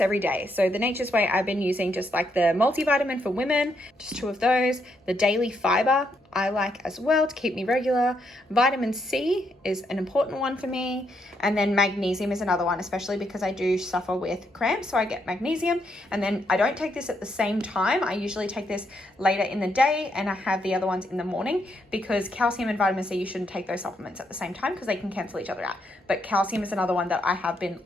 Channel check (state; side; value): normal; both; correlation 0.77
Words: every day. So the Nature's Way, I've been using just like the multivitamin for women, just 2 of those. The daily fiber I like as well to keep me regular. Vitamin C is an important one for me. And then magnesium is another one, especially because I do suffer with cramps. So I get magnesium, and then I don't take this at the same time. I usually take this later in the day, and I have the other ones in the morning, because calcium and vitamin C, you shouldn't take those supplements at the same time because they can cancel each other out. But calcium is another one that I have been